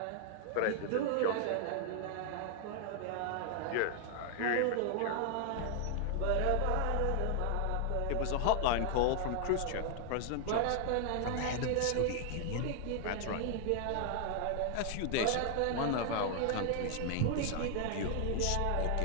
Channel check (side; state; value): both; different; correlation 0.00